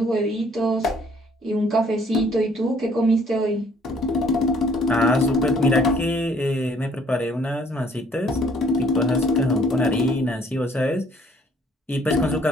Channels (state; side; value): normal; both; correlation 0.60